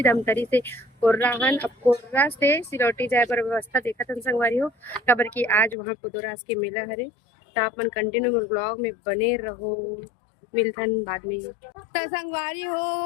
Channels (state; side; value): drops out; right; at 5.8 s